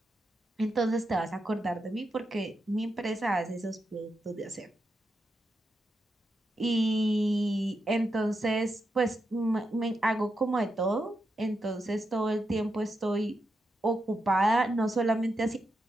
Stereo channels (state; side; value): normal; both; correlation 0.85